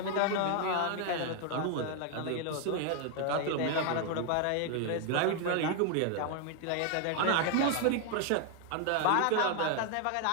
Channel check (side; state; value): both; different; correlation 0.00